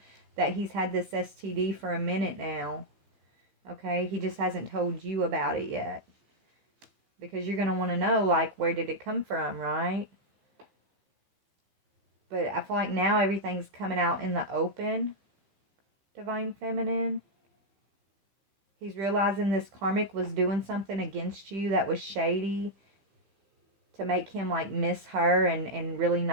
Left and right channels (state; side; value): late; left; 15 ms